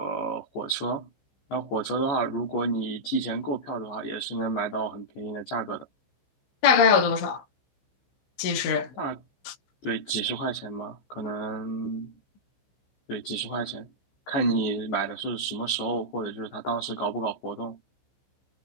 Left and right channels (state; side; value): late; right; 15 ms